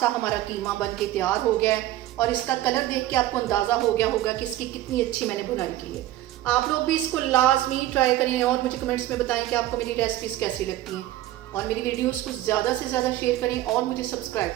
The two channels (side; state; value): left; quieter; 14.8 dB